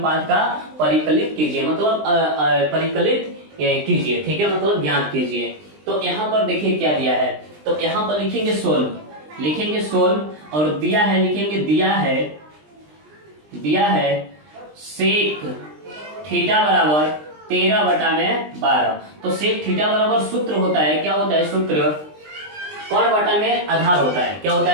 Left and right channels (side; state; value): left; late; 20 ms